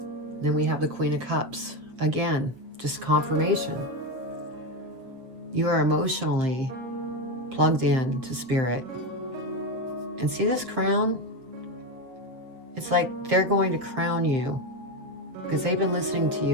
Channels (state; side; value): late; left; 7.7 ms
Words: Then we have the Queen of Cups. Again, just confirmation. You are emotionally plugged in to Spirit. And see this crown? It's like they're going to crown you. Because they've been listening to